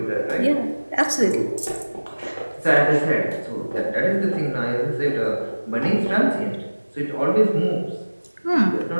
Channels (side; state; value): both; inverted; correlation -1.00